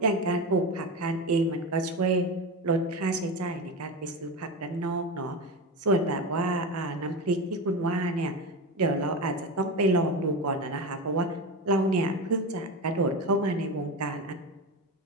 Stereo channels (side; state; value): both; normal; correlation 0.21